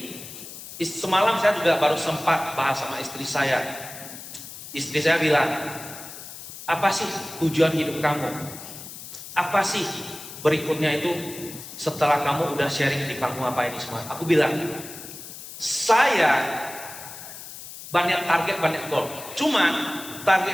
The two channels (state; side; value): noise; left; hiss, 13 dB below the sound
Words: semalam saya juga baru sempat bahas sama istri saya. Istri saya bilang, apa sih tujuan hidup kamu? Apa sih berikutnya itu setelah kamu udah sharing di panggung apa ini semua? Aku bilang, saya banyak target, banyak goal. Cuman